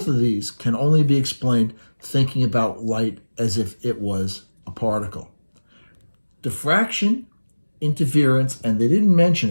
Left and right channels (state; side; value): inverted; both; correlation -1.00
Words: of these can only be explained thinking about light as if it was a particle. Diffraction, interference, and they didn't mention